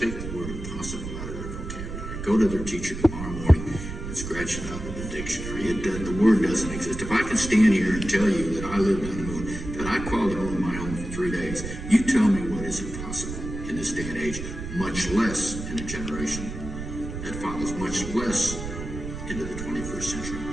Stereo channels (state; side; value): noise; right; rumble, 8 dB below the sound